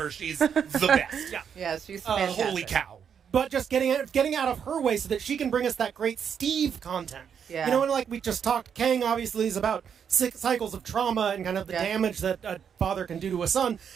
She's the best. Yeah. Yeah, she's fantastic. Holy cow. But just getting out of her way so that she can bring us that great Steve content. Yeah. And like we just talked, Kang obviously is about cycles of trauma and kind of the damage that a father can do to a son.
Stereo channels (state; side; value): quieter; left; 7.6 dB